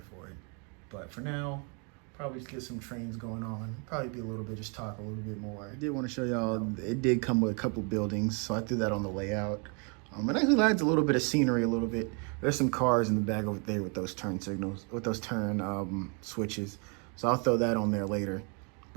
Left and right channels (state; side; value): quieter; left; 36.0 dB